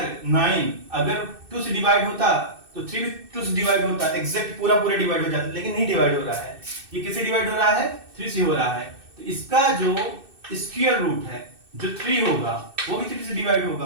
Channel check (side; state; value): left; late; 2.6 ms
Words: 9 अगर 2 से डिवाइड होता तो 3 भी 2 से डिवाइड होता, एग्जैक्ट पूरा पूरा डिवाइड हो जाता, लेकिन नहीं डिवाइड हो रहा है। ये किससे डिवाइड हो रहा है 3 से हो रहा है, तो इसका जो स्क्वायर रूट है जो 3 होगा वो भी 3 से डिवाइड